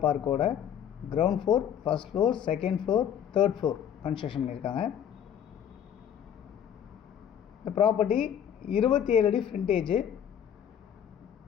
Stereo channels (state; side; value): quieter; right; 9.2 dB